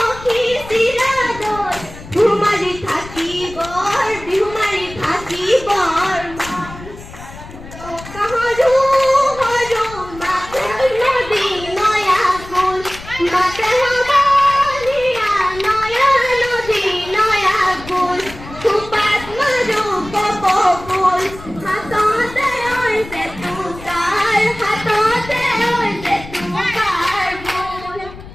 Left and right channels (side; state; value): left; noise; rumble, 15 dB below the sound